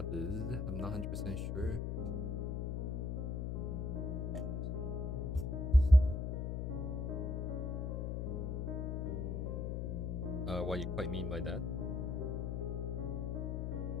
I'm not 100% sure. What you quite mean by that?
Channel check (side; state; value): left; noise; hum, 1 dB below the sound